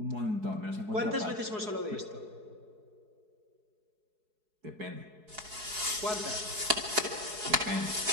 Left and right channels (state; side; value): late; left; 4.7 ms